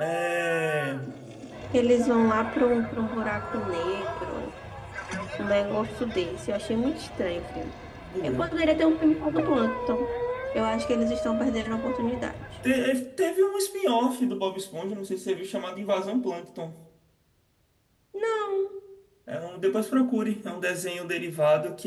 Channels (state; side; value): identical; both; correlation 1.00